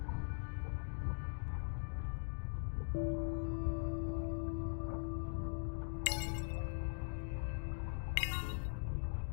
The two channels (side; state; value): right; silent; digital silence